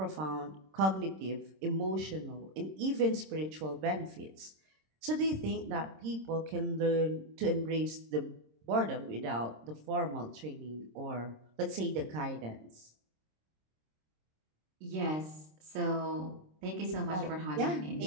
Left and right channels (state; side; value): late; left; 26 ms